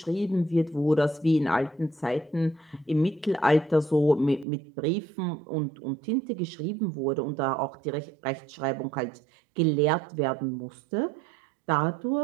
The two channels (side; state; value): left; drops out; at 4.5 s